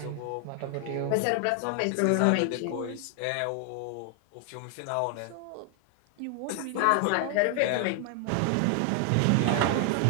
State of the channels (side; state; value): both; different; correlation 0.00